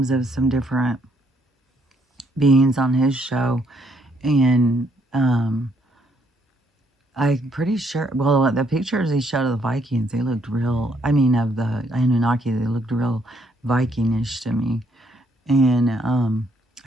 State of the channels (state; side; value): normal; both; correlation 0.70